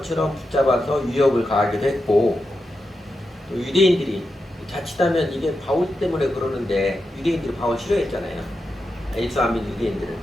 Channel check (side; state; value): both; normal; correlation 0.88